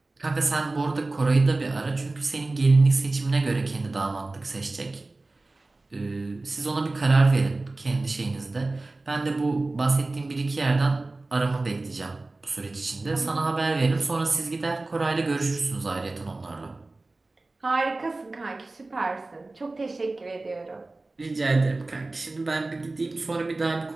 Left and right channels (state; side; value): quieter; left; 3.1 dB